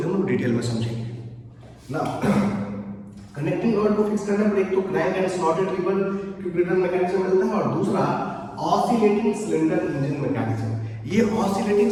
हम लोग डिटेल में समझेंगे ना। कनेक्टिंग रॉड को फिक्स करने पर एक तो crank and slotted lever quick return mechanism मिलता है और दूसरा ऑसिलेटिंग सिलेंडर इंजन मैकेनिज्म। ये ऑसिलेटिंग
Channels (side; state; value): both; identical; correlation 1.00